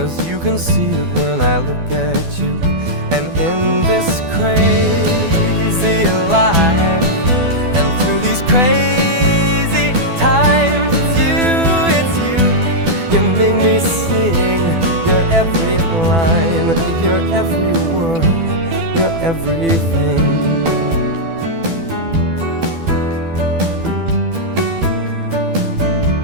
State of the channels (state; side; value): late; left; 12 ms